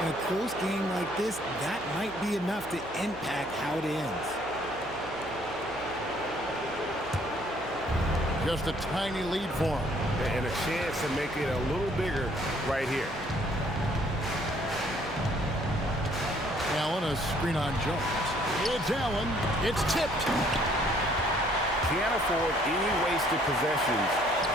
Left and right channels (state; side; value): noise; right; hum, 19 dB below the sound